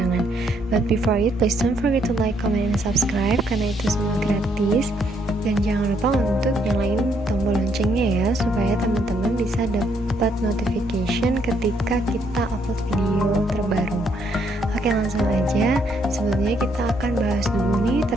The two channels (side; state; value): both; normal; correlation 0.72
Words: But before it, please don't forget to like, comment, and subscribe karena itu semua gratis. Dan jangan lupa untuk nyalain tombol loncengnya ya, supaya teman-teman bisa dapat notification ketika kita upload video terbaru. Oke, langsung aja. Sebelumnya kita akan bahas dulu nih